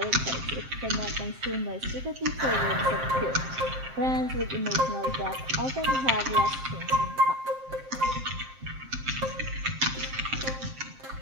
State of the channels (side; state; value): left; late; 7.6 ms